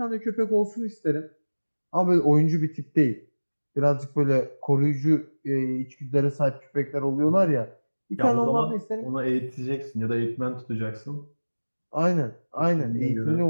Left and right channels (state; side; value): inverted; both; correlation -1.00